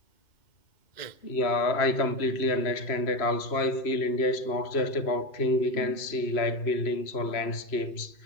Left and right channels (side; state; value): right; late; 3.0 ms